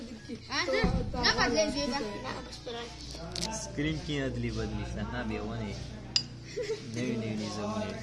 سکرین کی ادلی بدلی سنا به ونه نوی نظامونه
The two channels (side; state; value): both; identical; correlation 1.00